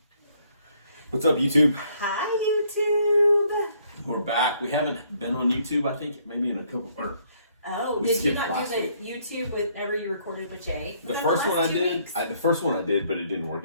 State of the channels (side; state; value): both; inverted; correlation -0.67